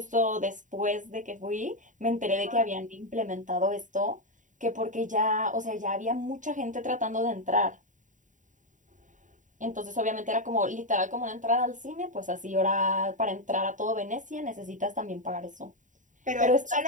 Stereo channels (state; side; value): late; left; 0.37 ms